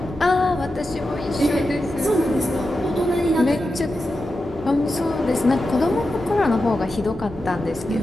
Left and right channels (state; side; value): normal; both; correlation 0.90